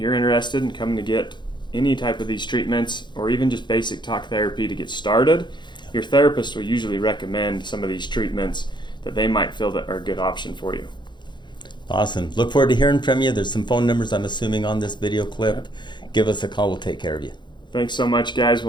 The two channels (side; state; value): right; late; 0.22 ms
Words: interested in coming to get any type of these treatments or even just basic talk therapy to get started, your therapist will usually recommend some of these treatments that they might feel that are a good option for you. Awesome. Look forward to hearing from you. There's some phone numbers, I'm assuming, on this video clip. Give us a call. We'll take care of you. Thanks so much, guys.